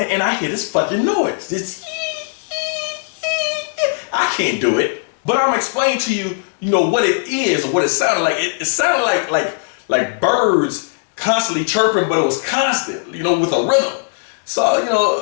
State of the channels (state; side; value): silent; right; digital silence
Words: and I hear this fucking noise. This I can't do it. But I'm explaining to you, you know, what it is or what it sounded like. It sounded like birds constantly chirping, but it was constant, you know, with a rhythm. So, you